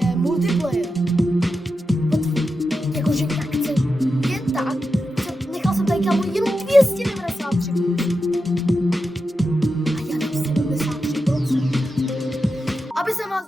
multiplayer. Jakože jak chci jen tak. Nechal jsem tady, kámo, jenom 293. A já dám 73%. Aby jsem vás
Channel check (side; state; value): both; normal; correlation 0.89